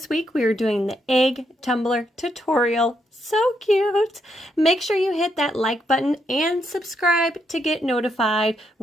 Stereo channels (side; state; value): both; normal; correlation 0.78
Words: week we are doing the egg tumbler tutorial. So cute! Make sure you hit that like button and subscribe to get notified